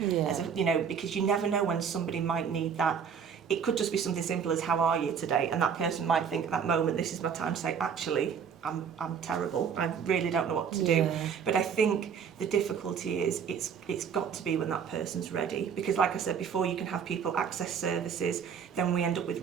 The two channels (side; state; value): left; quieter; 7.0 dB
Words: because you never know when somebody might need that. It could just be something simple as, how are you today? And that person might think at that moment, this is my time to say, actually, I'm terrible. I really don't know what to do. But I think the difficulty is it's got to be when that person's ready. Because like I said before, you can have people access services, then we end up with